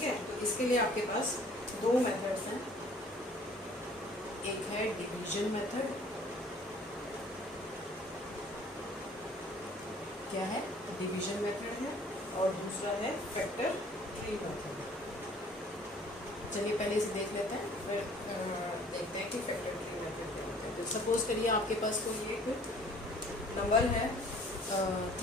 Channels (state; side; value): normal; both; correlation 0.54